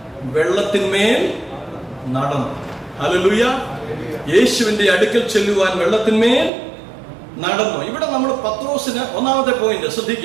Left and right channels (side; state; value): left; drops out; at 6.5 s